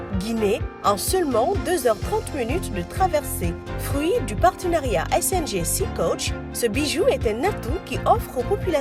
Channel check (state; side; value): identical; both; correlation 1.00